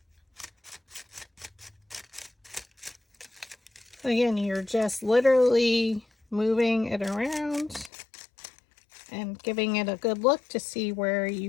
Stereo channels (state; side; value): drops out; right; at 7.9 s